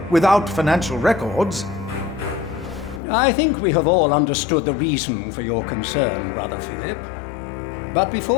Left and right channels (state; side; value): drops out; right; at 3.0 s